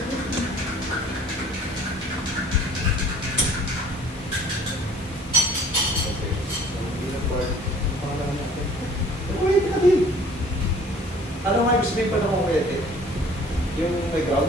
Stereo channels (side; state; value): both; normal; correlation 0.53